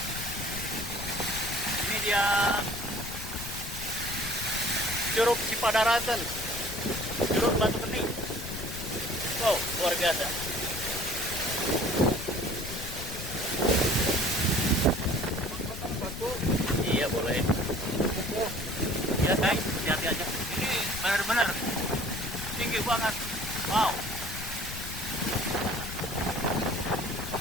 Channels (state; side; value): noise; left; rumble, 9 dB below the sound